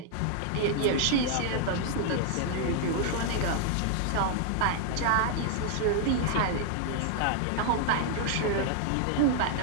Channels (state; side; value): different; both; correlation 0.00